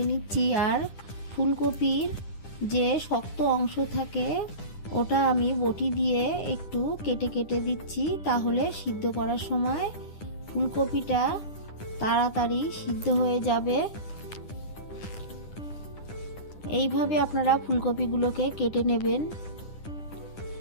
নিচ্ছি, আর ফুলকপির যে শক্ত অংশ থাকে ওটা আমি বটি দিয়ে একটু কেটে কেটে দিচ্ছি, তাহলে সিদ্ধ করার সময় ফুলকপিটা তাড়াতাড়ি সিদ্ধ হয়ে যাবে। এইভাবে আপনারা ফুলকপিগুলোকে কেটে নেবেন।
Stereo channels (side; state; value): right; late; 9.9 ms